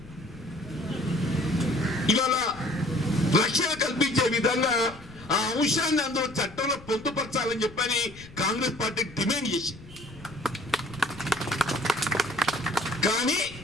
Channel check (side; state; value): left; noise; rumble, 19 dB below the sound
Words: ఇవాళ రక్షణ కల్పించే విధంగా ఆ అంశాన్ని అందులో చట్టంలో పొందుపరచాలని చెప్పని కాంగ్రెస్ పార్టీ డిమాండ్ చేసింది. కానీ